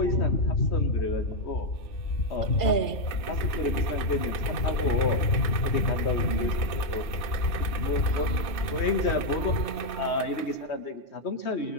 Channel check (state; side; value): late; right; 1.6 ms